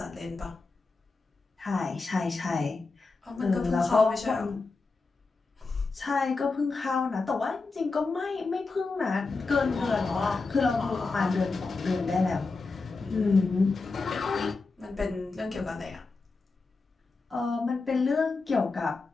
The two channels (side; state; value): right; quieter; 3.9 dB